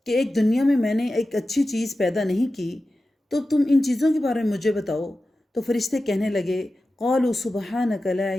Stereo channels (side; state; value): both; normal; correlation 0.94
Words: کہ ایک دنیا میں نے ایک اچھی چیز پیدا نہیں کی تو تم ان چیزوں کے بارے میں مجھے بتاؤ، تو فرشتے کہنے لگے قالوا سبحانک لا